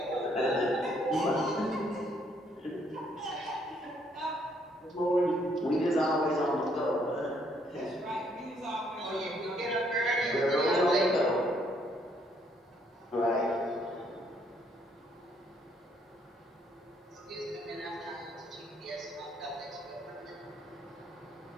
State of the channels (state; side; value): normal; both; correlation 0.69